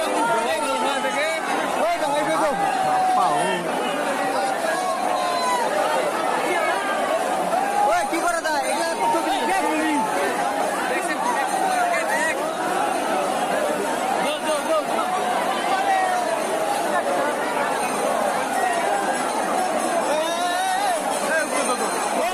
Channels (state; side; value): identical; both; correlation 1.00